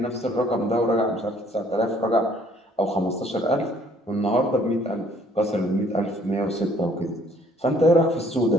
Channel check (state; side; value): normal; both; correlation 0.61